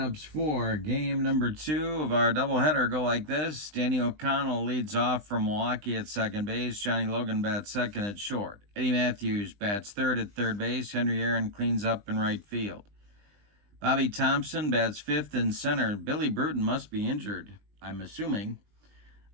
for game number 2 of our doubleheader go like this. Danny O'Connell leads off from Milwaukee at second base. Johnny Logan bats second at short. Eddie Matthews bats third at third base. Henry Aaron cleans up in right field. Bobby Thompson bats fifth in center. Billy Bruton must be injured, I'm assuming.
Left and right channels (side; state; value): left; late; 20 ms